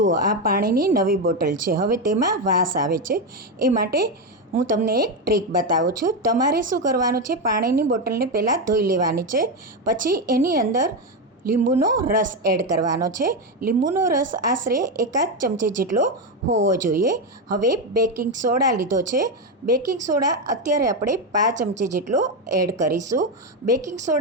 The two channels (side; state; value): both; normal; correlation 0.10